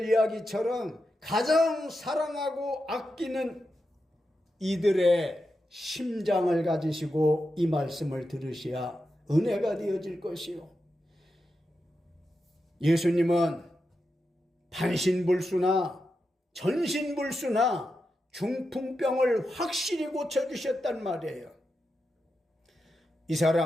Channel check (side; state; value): both; normal; correlation 0.88